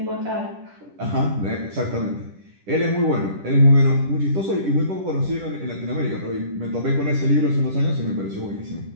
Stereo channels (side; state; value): left; late; 10 ms